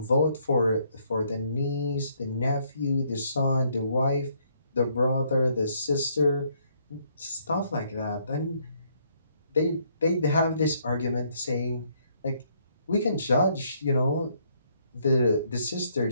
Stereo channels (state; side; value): inverted; both; correlation -0.69